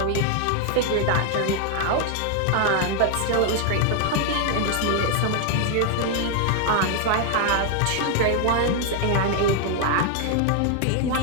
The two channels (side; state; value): both; different; correlation 0.00